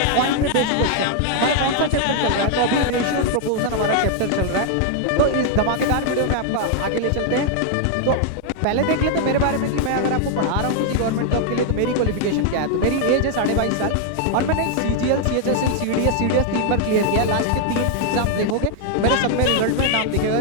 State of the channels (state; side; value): different; both; correlation 0.00